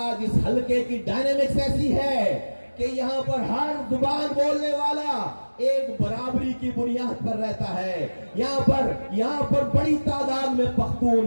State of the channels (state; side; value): inverted; both; correlation -1.00